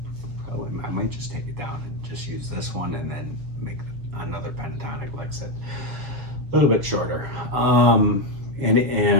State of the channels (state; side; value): late; left; 6.9 ms